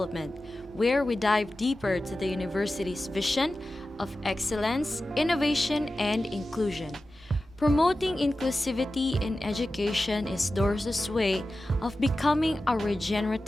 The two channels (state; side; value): normal; both; correlation 0.94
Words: where we dive deeper to the university's vision of excellence, innovation, and inclusion. Promoting inclusivity in education is DOrSU's way of becoming a